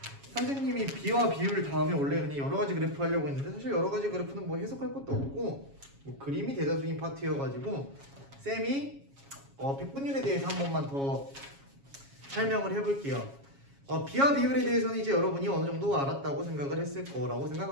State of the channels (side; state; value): left; late; 7.3 ms